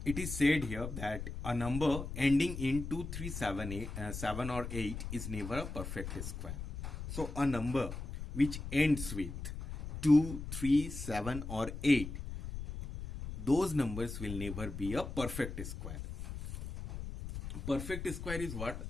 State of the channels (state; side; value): noise; left; rumble, 7 dB below the sound